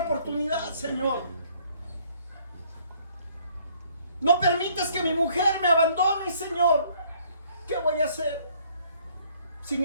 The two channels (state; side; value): inverted; both; correlation -0.62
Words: Señor. No permitas que mi mujer me abandone, Señor. ¿Qué voy a hacer